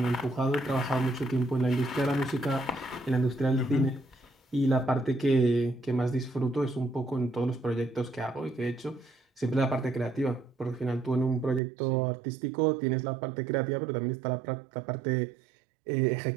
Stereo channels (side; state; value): left; drops out; at 11.6 s